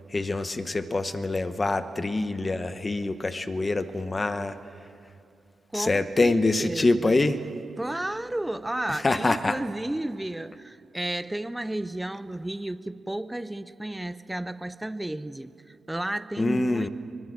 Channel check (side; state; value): both; normal; correlation 0.95